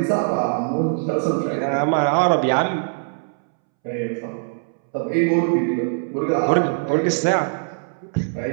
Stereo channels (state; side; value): silent; left; 64 dB below the other